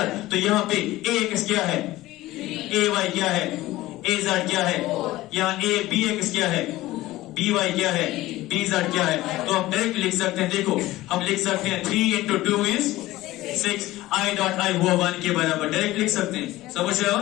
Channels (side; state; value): right; quieter; 17.1 dB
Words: तो यहाँ पे ax क्या है, ay क्या है, az क्या है, यहाँ a bx क्या है, by क्या है, bz क्या है, तो हम डायरेक्ट लिख सकते हैं, देखो हम लिख सकते हैं 3 into 2 is 6, i dot i हुआ 1 के बराबर, डायरेक्ट लिख सकते हैं, समझ रहे हो।